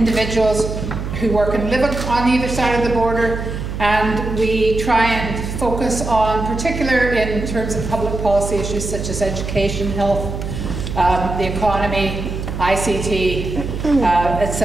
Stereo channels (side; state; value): right; noise; hum, 5 dB below the sound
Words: who work and live on either side of the border, and we try and focus on, particular in terms of public policy issues such as education, health, the economy, ICT,